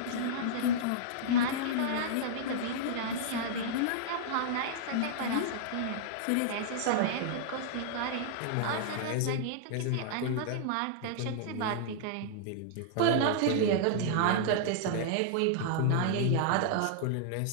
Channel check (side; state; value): both; different; correlation -0.01